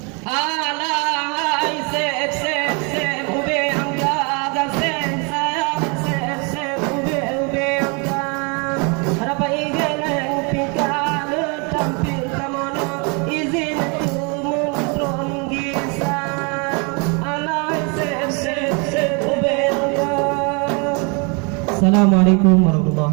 Alahai sep sep sep ube angga gasen sayang sep sep ube angga harapa igeleng pika le tampil kamono izin tu muntron gisa alahai sep sep sep ube angga. Assalamualaikum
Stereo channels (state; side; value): quieter; left; 33.0 dB